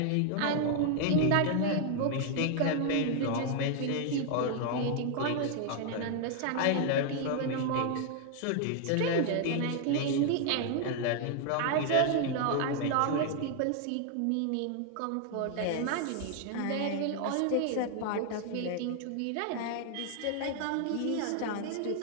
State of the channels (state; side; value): different; both; correlation 0.00